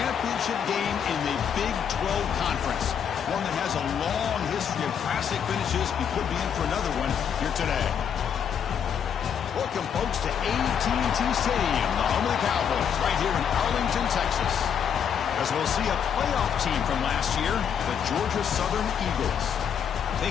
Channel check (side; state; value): right; quieter; 7.9 dB